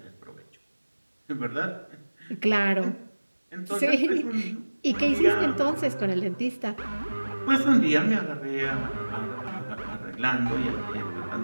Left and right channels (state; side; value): inverted; both; correlation -1.00